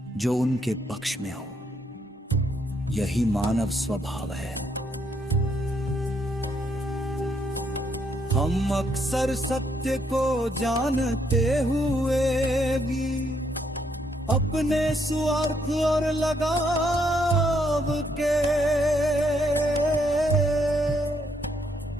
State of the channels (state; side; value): normal; both; correlation 0.73